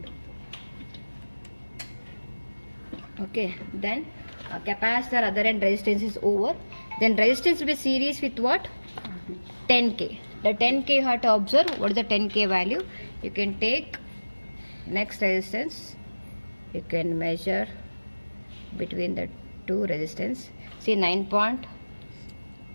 Okay, then capacitor other end resistance is over. Then resistance will be series with what? 10K. The 10K you have to observe. What is the 10K value? You can take next resistance. You can measure between the two resistance. See 9.9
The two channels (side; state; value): both; inverted; correlation -1.00